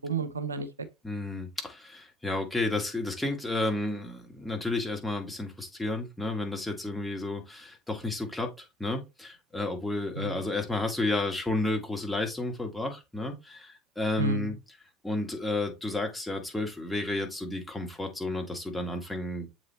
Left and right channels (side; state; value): both; normal; correlation 0.62